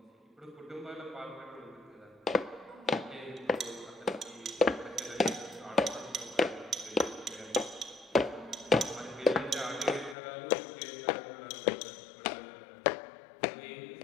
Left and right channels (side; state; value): right; drops out; at 10.2 s